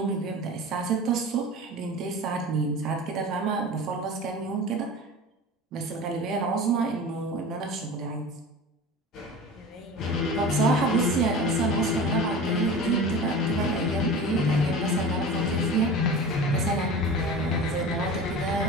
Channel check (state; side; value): normal; both; correlation 0.34